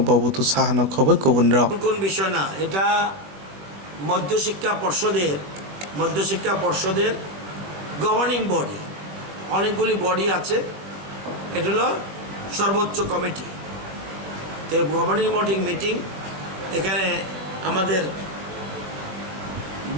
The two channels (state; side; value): late; left; 21 ms